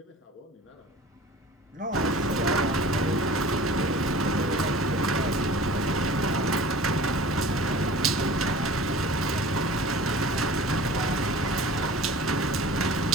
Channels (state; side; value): normal; both; correlation 0.43